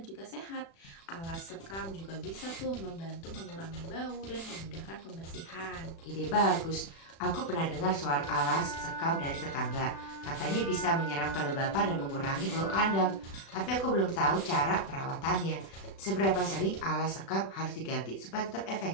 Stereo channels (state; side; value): late; right; 36 ms